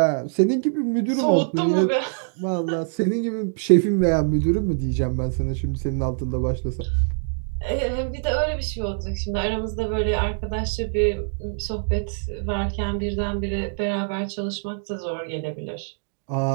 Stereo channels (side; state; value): left; silent; digital silence